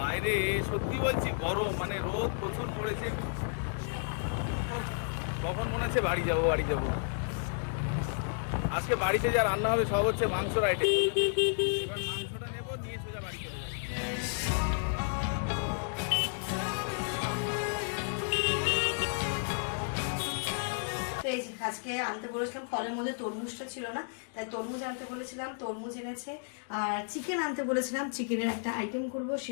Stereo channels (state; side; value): silent; right; digital silence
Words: বাইরে সত্যি বলছি গরম, মানে রোদ প্রচুর পড়েছে। কখন মনে হচ্ছে বাড়ি যাবো। আজকে বাড়িতে যা রান্না হবে সব হচ্ছে মাংসর আইটেম। মাংসটা নেবো, নিয়ে সোজা বাড়ি চলে যাবো। আজকে আনতে বলেছিলাম, ফলের মধ্যে তরমুজটা ছিল না, তাই তরমুজ আনতে বলেছিলাম, তরমুজ এনেছে। আর চিকেন আনতে বলেছিলাম, চিকেনের একটা আইটেম করব